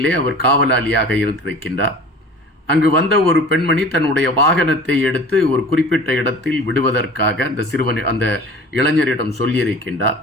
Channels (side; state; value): both; normal; correlation 0.43